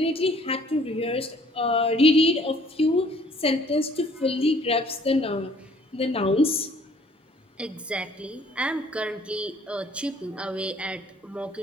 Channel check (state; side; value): normal; both; correlation 0.58